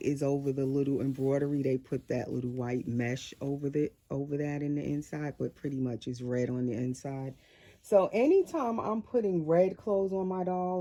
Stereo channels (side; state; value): both; identical; correlation 1.00